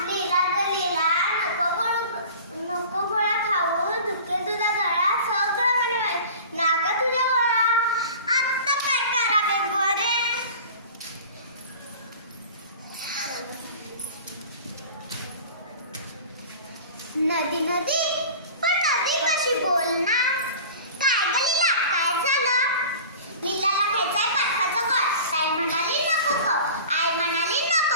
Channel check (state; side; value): inverted; both; correlation -0.40